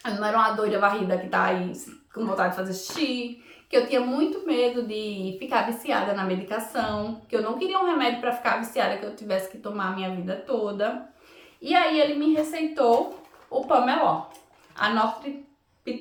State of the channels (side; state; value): both; identical; correlation 1.00